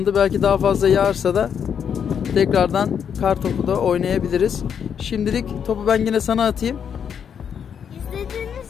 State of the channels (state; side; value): quieter; right; 7.8 dB